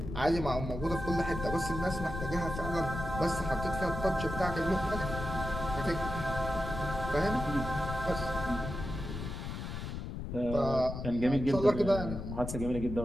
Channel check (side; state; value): left; noise; rumble, 6 dB below the sound